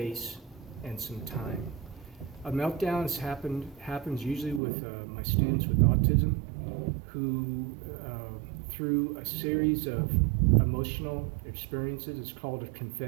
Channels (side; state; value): left; drops out; at 4.6 s